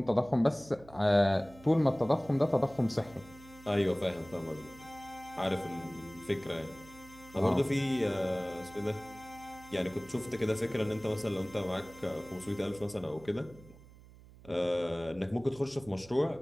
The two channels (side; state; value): right; noise; hum, 21 dB below the sound